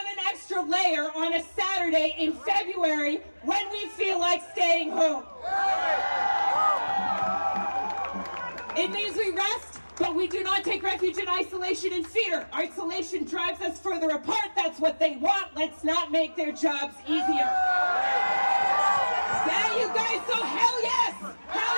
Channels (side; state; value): both; inverted; correlation -1.00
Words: an extra layer on a Saturday in February when we feel like staying home. It means we rest, but we do not take refuge in isolation and fear. Isolation drives us further apart. That's what they want. Let's not make their jobs easier. Yeah, you guys, so hell yes! Hell